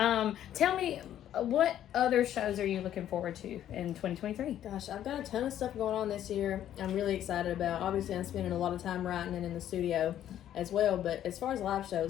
me, what other shows are you looking forward to in 2023? Gosh, I've got a ton of stuff going on this year. I'm really excited about. Obviously, I'm spending a lot of time writing and in the studio as well. But as far as live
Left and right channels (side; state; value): right; quieter; 11.3 dB